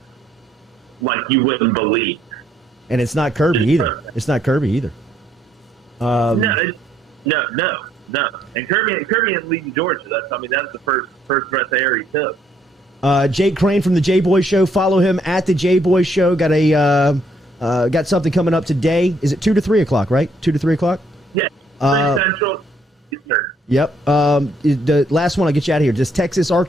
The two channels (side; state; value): both; normal; correlation 0.69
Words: like you wouldn't believe. And it's not Kirby either. It's not Kirby either. No. And Kirby is leading Georgia. That's the first breath of air he took. Jake Crain from the J Boy Show. Follow him at the J Boy Show. Got something coming up today. Is it 2 to 3 o'clock? Right, 2 to 3 o'clock. Yeah, 3 Central. Eastern. Yep. The last one. I'll get you out of here. Does Texas